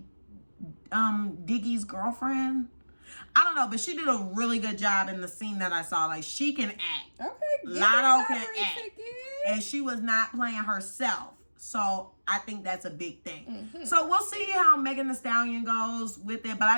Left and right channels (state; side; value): inverted; both; correlation -1.00